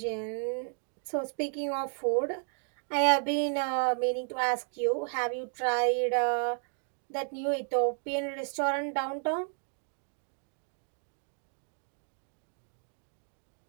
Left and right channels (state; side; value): silent; left; 55 dB below the other